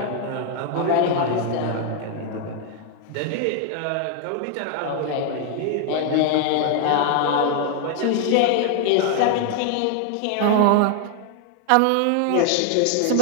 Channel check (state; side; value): different; both; correlation 0.00